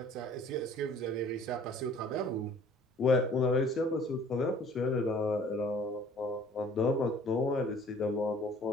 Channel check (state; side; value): normal; both; correlation 0.53